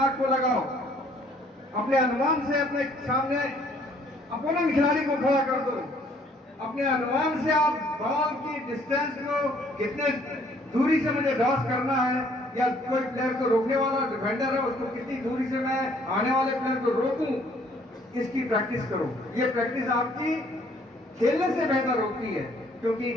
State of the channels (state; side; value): normal; both; correlation 0.61